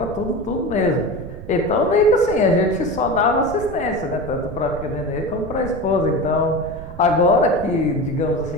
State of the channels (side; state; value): right; noise; rumble, 12 dB below the sound